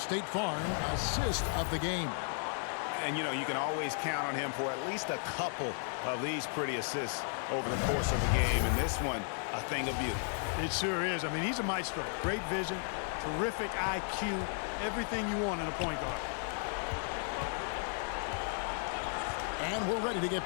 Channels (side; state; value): right; silent; 55 dB below the other